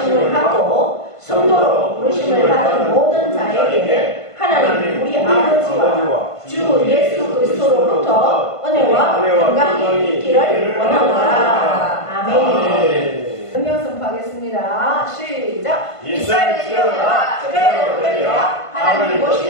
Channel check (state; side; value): late; right; 1.5 ms